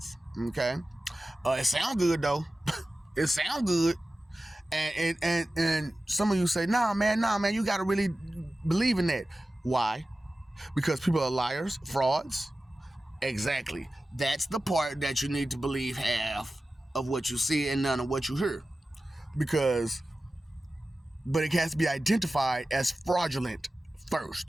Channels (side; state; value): both; normal; correlation 0.95